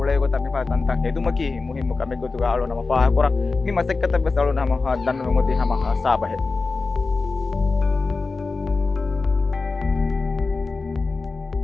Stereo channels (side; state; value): right; quieter; 3.9 dB